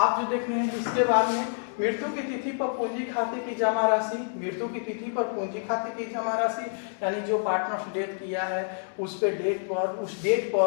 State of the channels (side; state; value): right; silent; digital silence